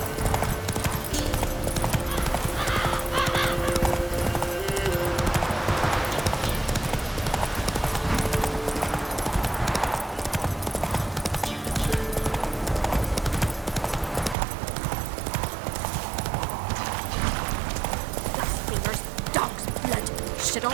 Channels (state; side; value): drops out; left; at 14.4 s